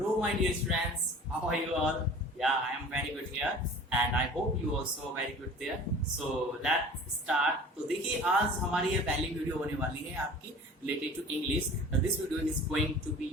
my dear students. How are you all? Yeah, I am very good here, and I hope you also very good there. So let's start. तो देखिए आज हमारी ये पहली वीडियो होने वाली है आपकी related to English. This video is going to be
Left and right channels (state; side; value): normal; both; correlation 0.43